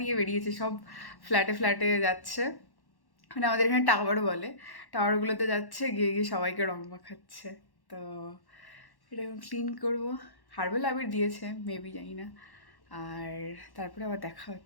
নিয়ে বেরিয়েছে, সব ফ্ল্যাটে ফ্ল্যাটে যাচ্ছে। মানে আমাদের এখানে টাওয়ার বলে, টাওয়ারগুলোতে যাচ্ছে, গিয়ে গিয়ে সবাইকে রং মাখাচ্ছে। তো এটা এখন ক্লিন করবো। হার্বাল আবির দিয়েছে, মেবি, জানি না। আর তারপরে আবার দেখা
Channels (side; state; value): right; late; 1.1 ms